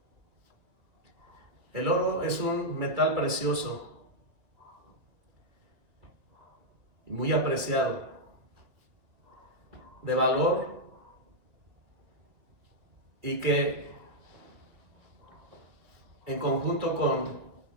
El oro es un metal precioso y muy apreciado, de valor, y que en conjunto con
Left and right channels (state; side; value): late; left; 2.6 ms